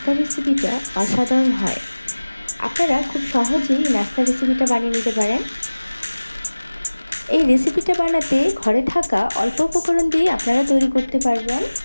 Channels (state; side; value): inverted; both; correlation -1.00